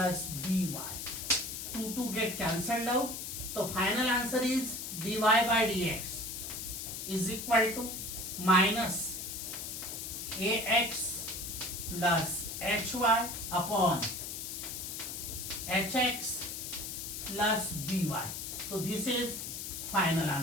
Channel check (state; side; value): noise; left; hiss, 6 dB below the sound